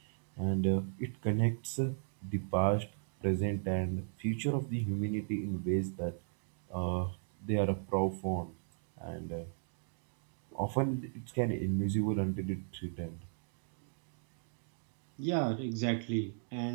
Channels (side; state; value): left; silent; digital silence